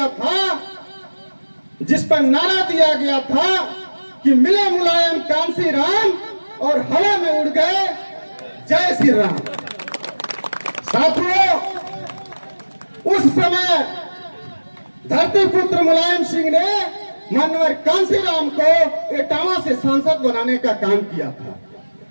था, जिस पर नारा दिया गया था कि मिले मुलायम कांसीराम और हवा में उड़ गए जय श्री राम। साथियों, उस समय धरती पुत्र मुलायम सिंह ने मानवर कांसीराम को इटावा से सांसद बनाने का काम किया था।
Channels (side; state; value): both; inverted; correlation -1.00